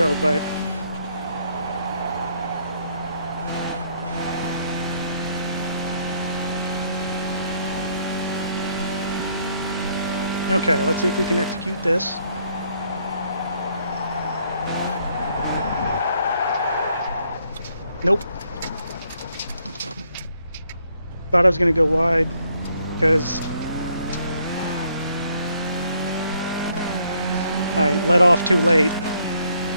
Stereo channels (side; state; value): both; inverted; correlation -0.69